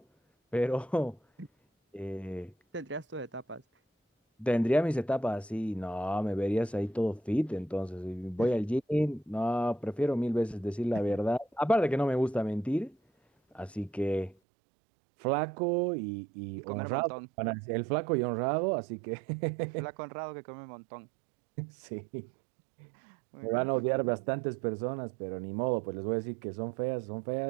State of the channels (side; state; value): left; drops out; at 14.4 s